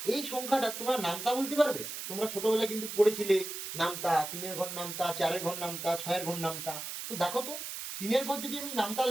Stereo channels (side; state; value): right; noise; hiss, 7 dB below the sound